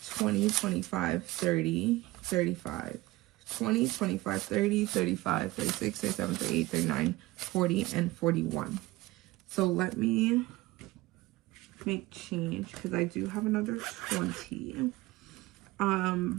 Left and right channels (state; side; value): quieter; left; 19.3 dB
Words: 20, 25, 30, 35, 20, 25, 30, 35, 36, 37, 38, 39, 40, and 41. So let me make change because I do have another 20.